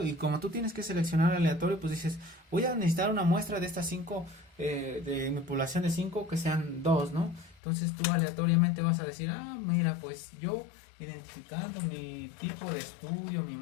Y como tú tienes que seleccionar aleatorio, pues dices, voy a necesitar una muestra de estas 5, de mi población de 5, que sean 2, ¿no? Entonces tú aleatoriamente vas a decir, mira, pues yo identificando mi tipo de estudio, mi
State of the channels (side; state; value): right; drops out; at 7.6 s